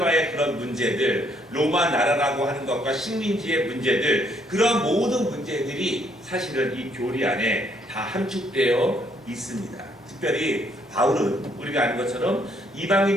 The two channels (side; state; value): both; normal; correlation 0.69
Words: 그런 문제들, 로마 나라라고 하는 것과 식민지의 문제들, 그런 모든 문제들이 사실은 이 교리 안에 다 함축되어 있습니다. 특별히 바울은 우리가 아는 것처럼